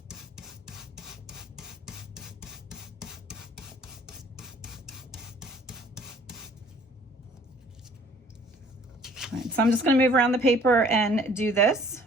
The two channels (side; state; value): both; normal; correlation 0.55